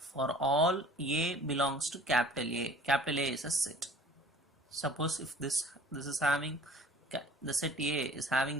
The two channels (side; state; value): both; normal; correlation 0.49